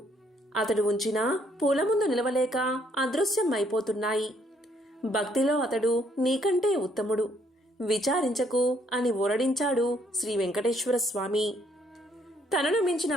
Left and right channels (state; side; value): normal; both; correlation 0.68